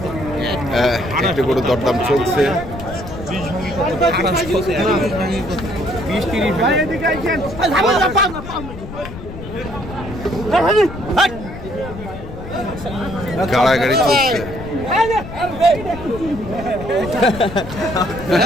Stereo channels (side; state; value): left; noise; rumble, 11 dB below the sound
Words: একটি গরুর দরদাম চলছে। গাড়াগাড়ি চলছে।